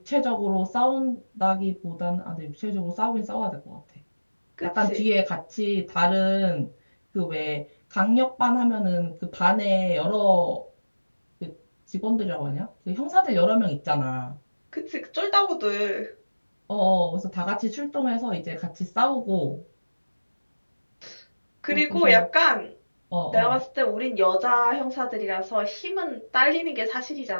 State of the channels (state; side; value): inverted; both; correlation -1.00